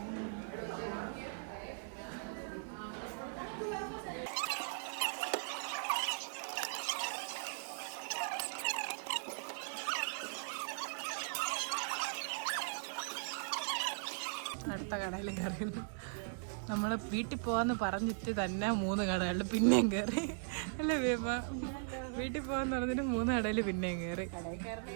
അടുത്ത കടയിൽ കയറി. നമ്മൾ വീട്ടിൽ പോവാന്ന് പറഞ്ഞിട്ട് തന്നെ 3 കടകളിൽ പിന്നെയും കയറി അല്ലേ വേമ? വീട്ടിൽ പോവാന്ന് പറഞ്ഞിട്ട് 3 കടയിൽ പിന്നെയും കയറി.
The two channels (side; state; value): left; silent; digital silence